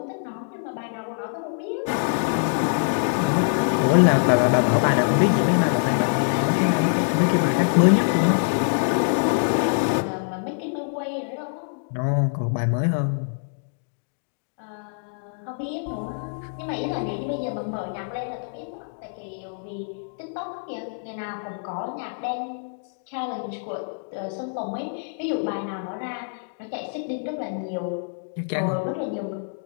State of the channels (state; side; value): silent; right; digital silence